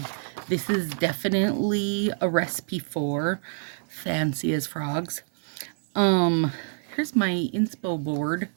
This is definitely a recipe for fancy as frogs. Here's my inspo board.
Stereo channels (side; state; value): left; silent; digital silence